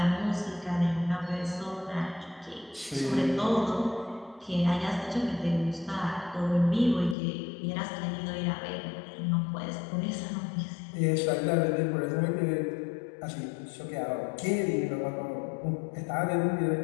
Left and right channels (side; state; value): right; drops out; at 7.2 s